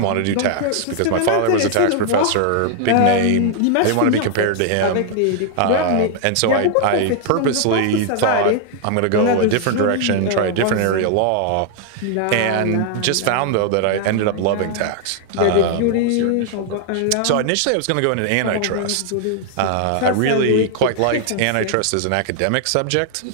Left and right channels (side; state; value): both; different; correlation 0.00